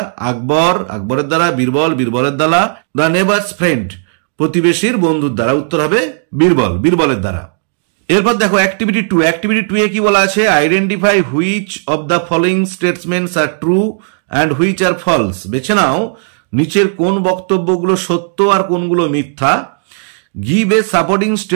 আকবর, আকবরের দ্বারা। বীরবল, বীরবলের দ্বারা। দ্য নেবারস ফ্রেন্ড, প্রতিবেশীর বন্ধুর দ্বারা। উত্তর হবে বীরবল, বীরবলের দ্বারা। এরপর দেখো অ্যাক্টিভিটি 2। অ্যাক্টিভিটি 2 এ কি বলা আছে? Identify which of the following statements are true and which are false. বেছে নাও নিচের কোন বক্তব্যগুলো সত্য আর কোনগুলো মিথ্যা। Give a supporting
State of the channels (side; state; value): left; silent; 68 dB below the other